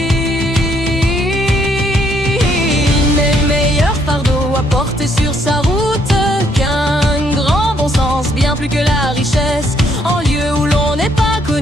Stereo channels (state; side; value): normal; both; correlation 0.70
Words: Il n'est meilleur fardeau à porter sur sa route qu'un grand bon sens, bien plus que la richesse. En lieu où l'on n'est pas